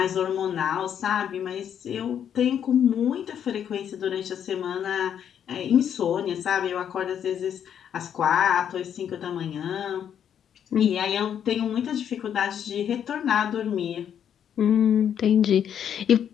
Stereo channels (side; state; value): right; quieter; 9.0 dB